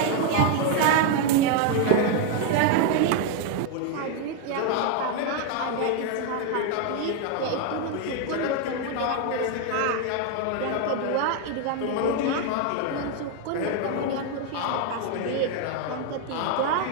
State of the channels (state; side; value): different; both; correlation 0.01